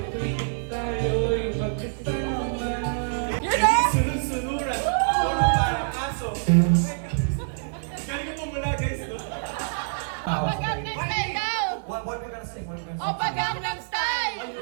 tuwing tayo'y magkasama. Sunod-sunuran, ako na parang aso. Galing mo mula guys, no? Opa Gangnam Style daw! What we gonna sing? What we gonna sing? Opa Gangnam Style!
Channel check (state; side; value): silent; left; 57 dB below the other